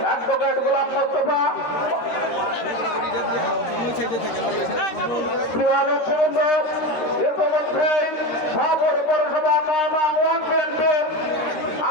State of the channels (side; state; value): right; late; 13 ms